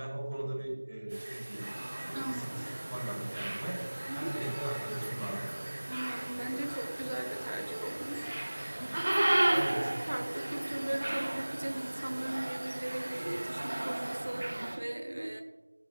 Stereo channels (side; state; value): both; inverted; correlation -1.00